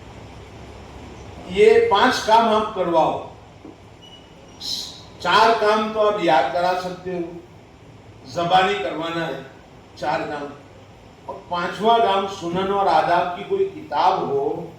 یہ 5 کام آپ کرواؤ. 4 کام تو آپ یاد کرا سکتے ہو, زبانی کروانا ہے 4 کام. اور 5واں کام سنن اور آداب کی کوئی کتاب ہو,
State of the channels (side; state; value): both; identical; correlation 1.00